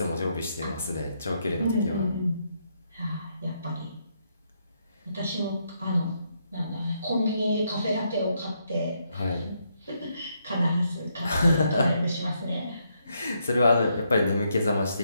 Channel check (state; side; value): inverted; both; correlation -0.77